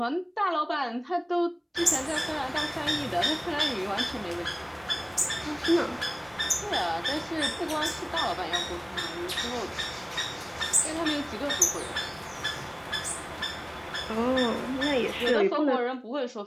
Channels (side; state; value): both; identical; correlation 1.00